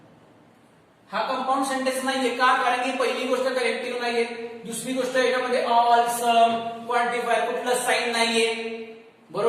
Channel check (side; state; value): both; identical; correlation 1.00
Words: हा कंपाऊंड सेंटेन्स नाहीये. का? कारण की पहिली गोष्ट कलेक्टिव्ह नाहीये, दुसरी गोष्ट याच्यामध्ये ऑल, सम, क्वांटिफायर कुठलं साईन नाहीये.